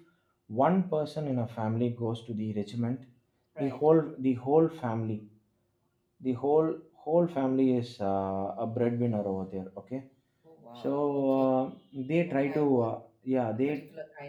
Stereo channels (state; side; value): identical; both; correlation 1.00